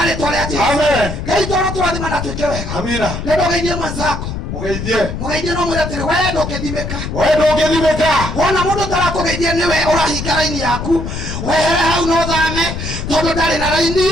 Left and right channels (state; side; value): noise; left; rumble, 5 dB below the sound